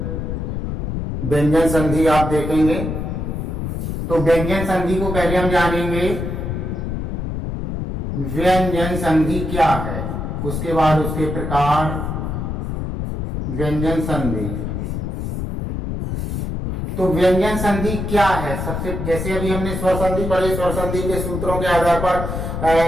व्यंजन संधि आप देखेंगे। तो व्यंजन संधि को पहले हम जानेंगे व्यंजन संधि क्या है, उसके बाद उसके प्रकार। व्यंजन संधि, तो व्यंजन संधि क्या है? सबसे जैसे अभी हमने स्वर संधि पढ़े, स्वर संधि के सूत्रों के आधार पर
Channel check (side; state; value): left; noise; rumble, 3 dB below the sound